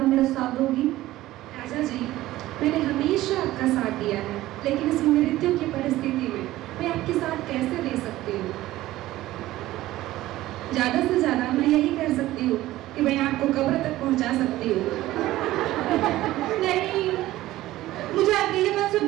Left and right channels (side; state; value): left; quieter; 16.0 dB